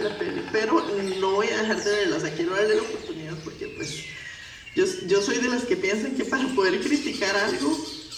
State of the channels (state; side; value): identical; both; correlation 1.00